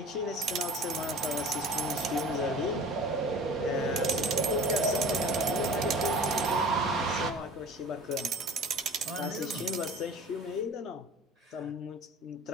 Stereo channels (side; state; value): both; normal; correlation 0.42